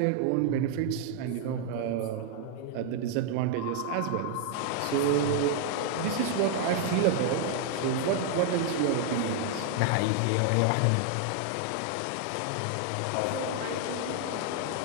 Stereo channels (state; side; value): different; both; correlation 0.00